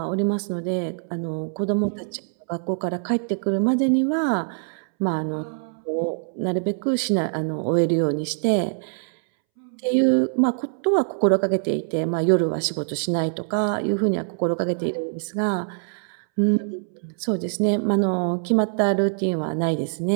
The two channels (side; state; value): left; silent; 63 dB below the other